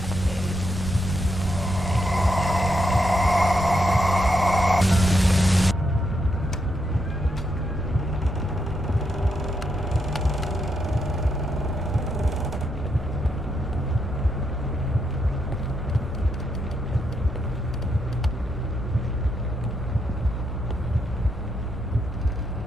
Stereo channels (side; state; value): both; normal; correlation 0.80